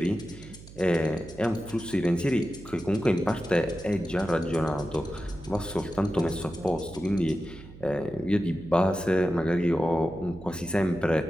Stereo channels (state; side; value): noise; right; hum, 17 dB below the sound